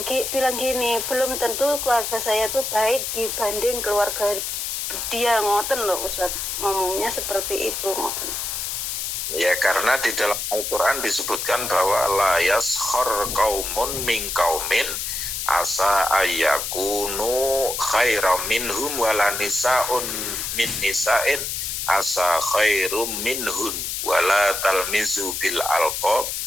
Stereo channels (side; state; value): left; noise; hiss, 3 dB below the sound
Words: bilang gini, belum tentu keluarga saya tuh baik dibanding keluarga dia, ngoten loh Ustaz. Ngomongnya seperti itu, ngoten. Ya karena di dalam Al-Quran disebutkan bahwa la yaskhar qaumun min qaumin asa ayyakunu khairam minhum wala nisa'un min nisa'in asa khairum minhum wala talmizu bil alqab